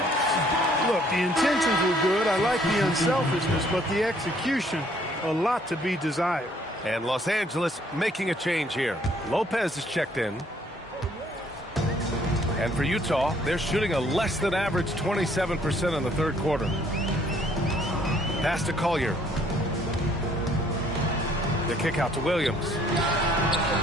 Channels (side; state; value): both; normal; correlation 0.63